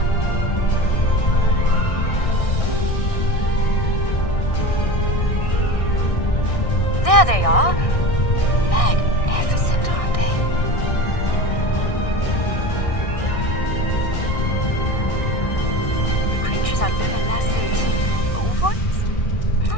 There they are. Magnificent, aren't they? The creatures are luminescent ovoids? I'm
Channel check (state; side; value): late; right; 1.6 ms